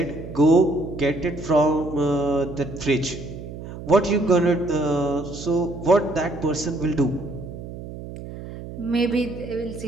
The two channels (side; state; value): right; noise; hum, 11 dB below the sound